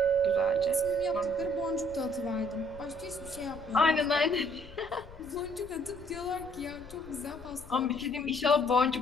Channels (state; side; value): noise; left; rumble, 18 dB below the sound